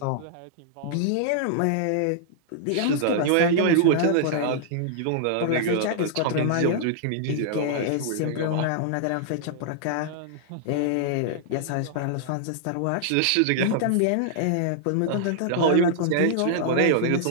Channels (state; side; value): different; both; correlation -0.01